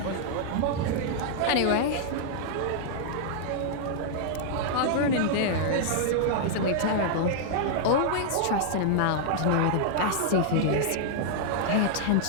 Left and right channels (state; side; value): different; both; correlation -0.01